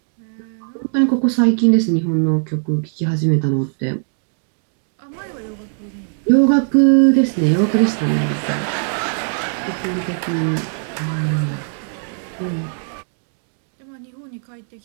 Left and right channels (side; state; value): left; silent; digital silence